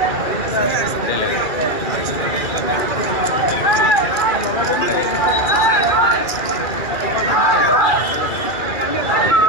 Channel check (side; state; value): right; late; 2.4 ms